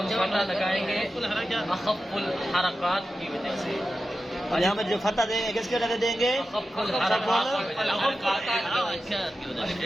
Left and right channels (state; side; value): normal; both; correlation 0.92